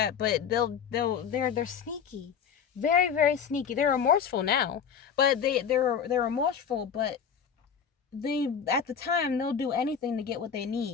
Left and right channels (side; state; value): right; quieter; 7.3 dB